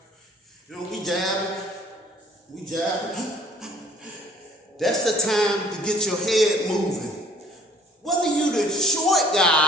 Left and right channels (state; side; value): normal; both; correlation 0.56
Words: we jabbing. That's the time to get your head moving. Whether you the short